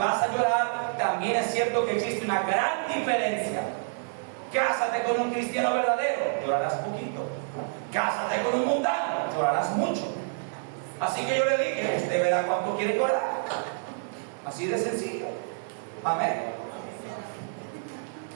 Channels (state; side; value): silent; left; digital silence